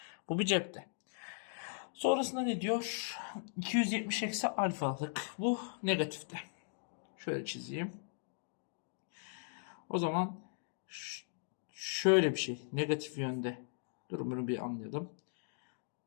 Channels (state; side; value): silent; right; digital silence